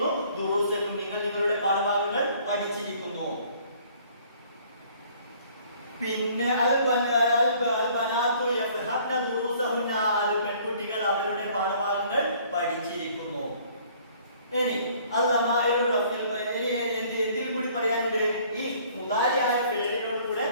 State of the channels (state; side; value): inverted; both; correlation -0.57